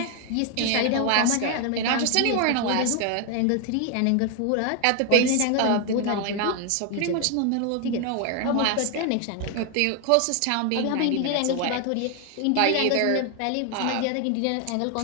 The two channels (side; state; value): both; different; correlation 0.01